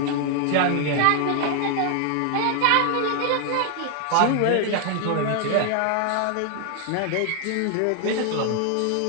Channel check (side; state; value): both; different; correlation 0.00